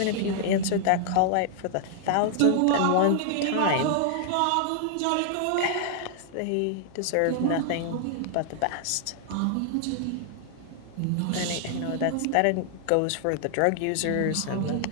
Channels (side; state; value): both; different; correlation 0.00